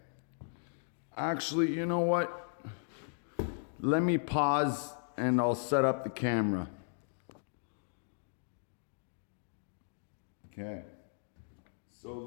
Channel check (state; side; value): silent; right; digital silence